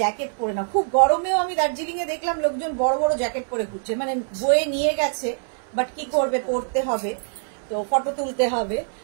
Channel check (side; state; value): left; silent; 63 dB below the other